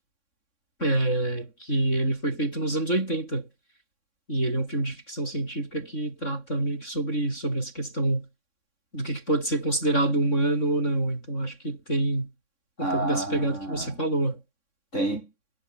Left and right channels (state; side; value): late; right; 3.6 ms